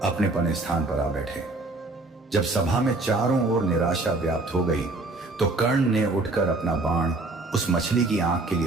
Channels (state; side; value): quieter; left; 3.1 dB